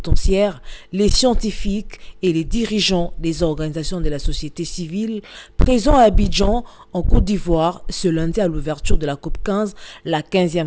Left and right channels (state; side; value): identical; both; correlation 1.00